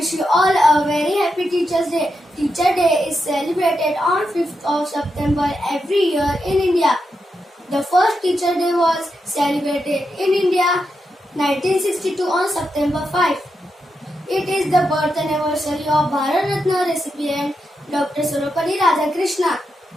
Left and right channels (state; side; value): normal; both; correlation 0.86